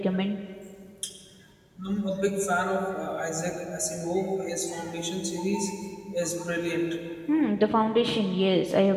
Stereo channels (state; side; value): identical; both; correlation 1.00